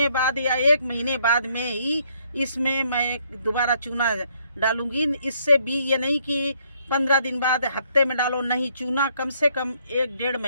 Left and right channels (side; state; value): both; inverted; correlation -0.69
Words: बाद या 1 महीने बाद में ही इसमें मैं दोबारा चूना डालूंगी। इससे भी ये नहीं कि 15 दिन बाद, हफ्ते में डालो, नहीं। चूना कम से कम 1-1.5